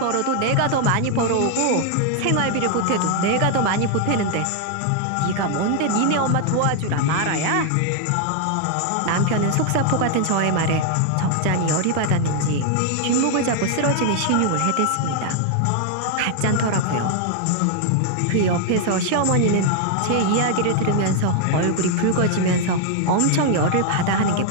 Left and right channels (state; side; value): different; both; correlation 0.00